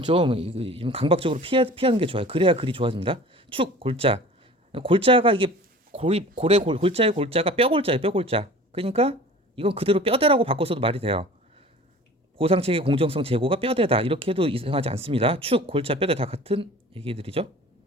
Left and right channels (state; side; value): normal; both; correlation 0.42